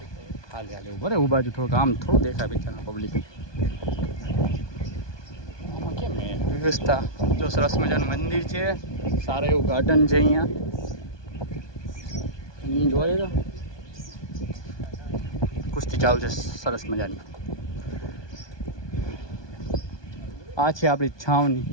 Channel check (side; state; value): right; late; 1.2 ms